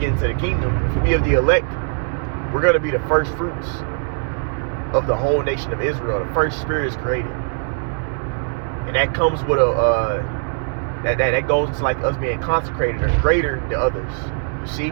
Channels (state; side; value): silent; left; 60 dB below the other